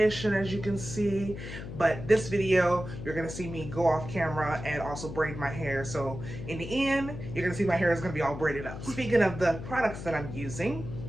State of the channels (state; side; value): noise; left; hum, 9 dB below the sound